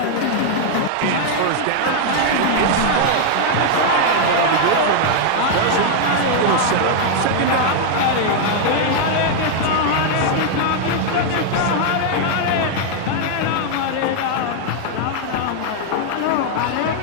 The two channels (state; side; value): different; both; correlation 0.00